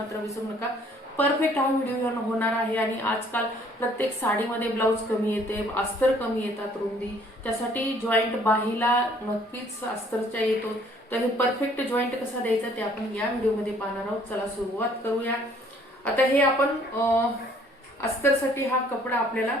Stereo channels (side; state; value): both; normal; correlation 0.60